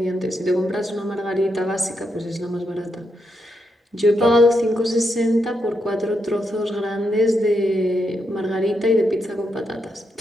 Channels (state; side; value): normal; both; correlation 0.82